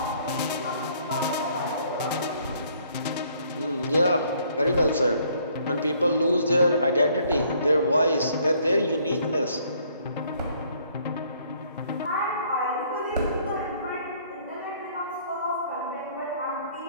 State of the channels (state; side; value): inverted; both; correlation -0.63